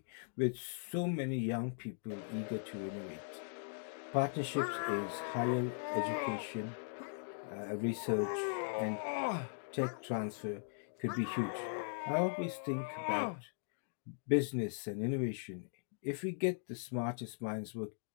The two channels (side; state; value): right; silent; digital silence